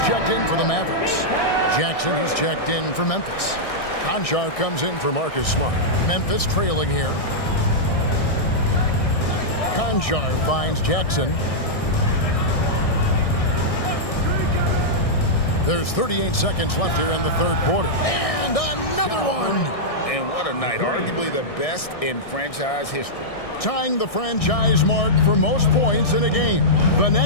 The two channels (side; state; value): right; late; 1.6 ms